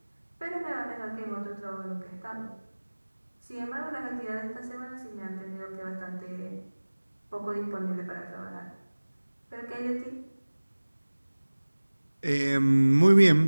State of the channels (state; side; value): inverted; both; correlation -1.00